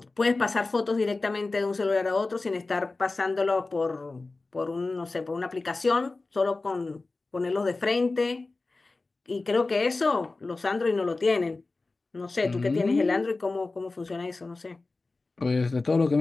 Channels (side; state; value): right; quieter; 3.5 dB